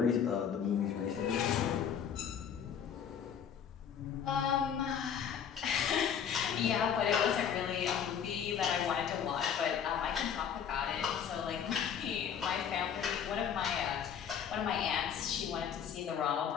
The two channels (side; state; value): right; quieter; 8.0 dB